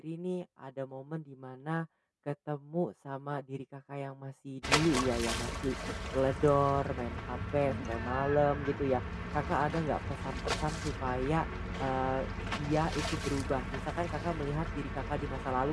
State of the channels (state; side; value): identical; both; correlation 1.00